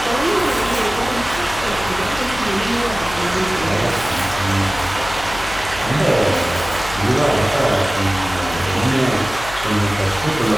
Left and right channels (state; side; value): noise; left; hum, 13 dB below the sound